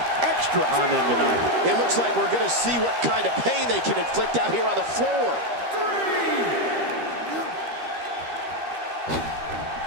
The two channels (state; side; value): late; left; 13 ms